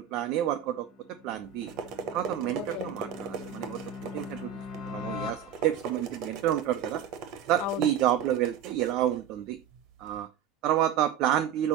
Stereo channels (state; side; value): quieter; left; 9.2 dB